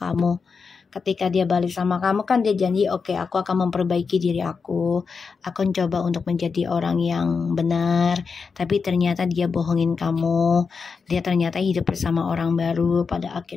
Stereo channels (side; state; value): right; quieter; 5.2 dB